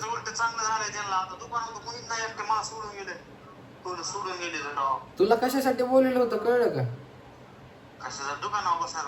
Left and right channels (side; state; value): both; identical; correlation 1.00